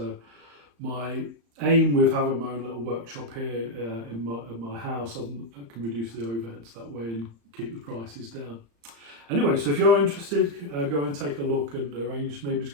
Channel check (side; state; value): left; late; 35 ms